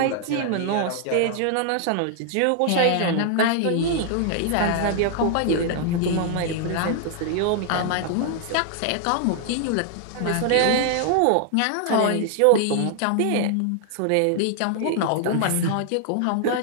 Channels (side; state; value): both; different; correlation 0.00